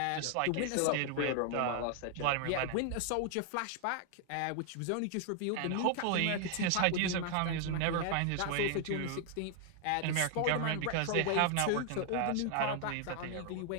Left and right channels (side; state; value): both; different; correlation 0.00